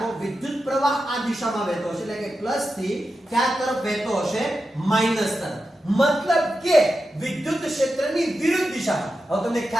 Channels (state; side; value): normal; both; correlation 0.90